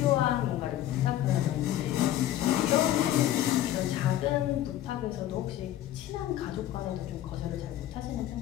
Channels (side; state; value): right; quieter; 13.0 dB